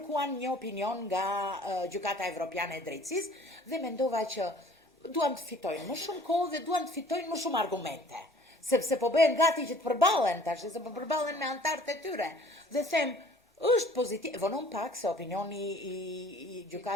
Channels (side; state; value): both; normal; correlation 0.52